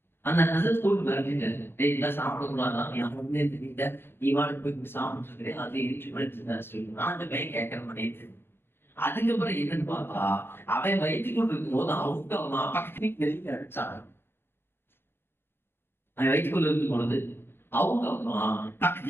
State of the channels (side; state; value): right; late; 0.11 ms